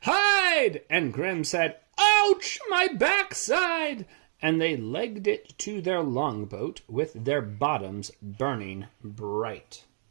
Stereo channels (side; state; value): left; silent; digital silence